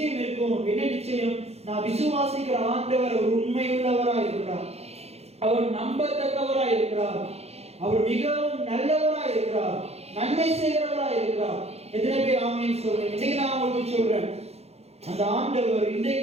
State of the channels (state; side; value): late; left; 0.30 ms